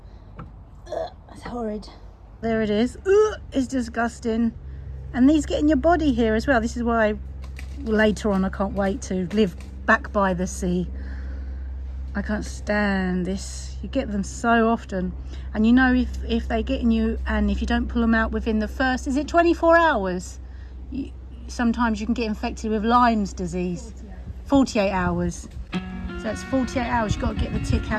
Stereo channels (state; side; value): identical; both; correlation 1.00